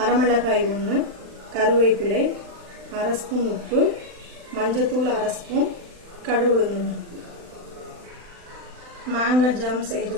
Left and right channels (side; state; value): left; late; 40 ms